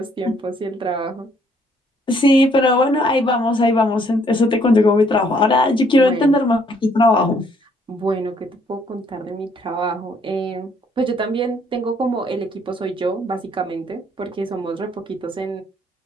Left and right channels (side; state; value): both; normal; correlation 0.66